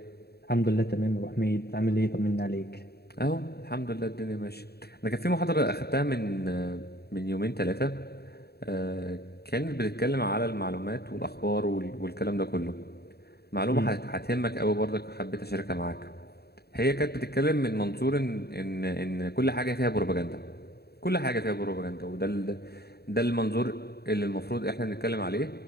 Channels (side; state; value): right; late; 0.47 ms